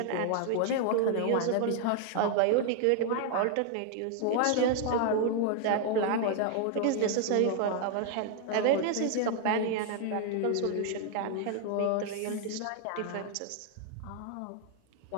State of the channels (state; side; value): different; both; correlation 0.00